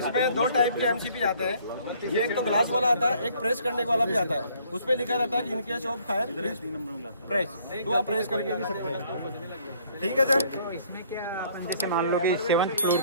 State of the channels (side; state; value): both; inverted; correlation -0.61